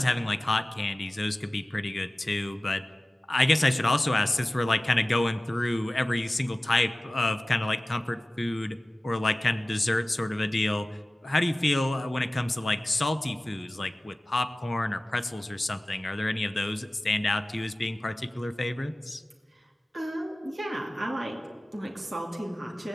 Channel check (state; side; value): normal; both; correlation 0.97